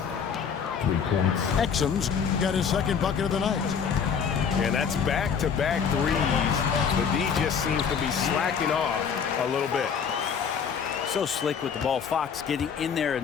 3 points. Exum's got his second bucket of the night. And that's back-to-back threes. The D just seems to be slacking off a little bit. So slick with the ball. Fox getting in there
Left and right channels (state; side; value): quieter; right; 6.8 dB